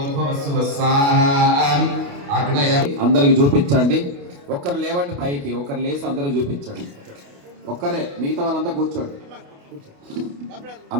శుభ స్వాహ అగ్నయ అందరికి చూపించండి. ఒక్కరు లేవండి పైకి, ఒకరు లేచి అందరూ చూపించండి. ఒక్కరే, మిగతా వాళ్ళంతా కూర్చోండి.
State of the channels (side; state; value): left; late; 28 ms